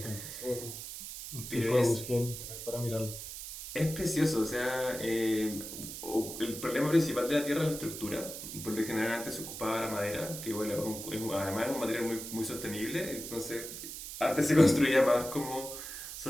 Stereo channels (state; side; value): noise; right; hiss, 9 dB below the sound